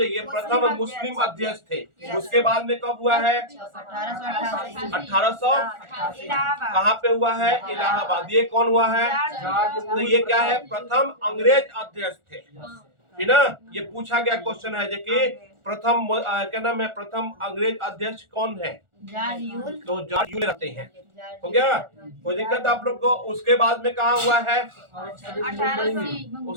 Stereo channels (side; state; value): left; late; 1.4 ms